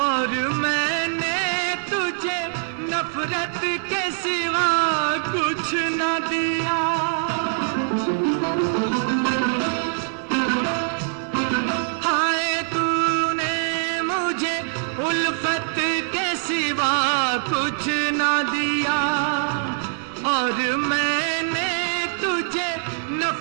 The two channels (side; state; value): left; silent; 61 dB below the other